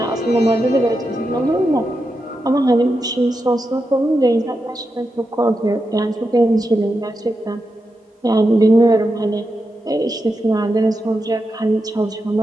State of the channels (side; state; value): both; normal; correlation 0.88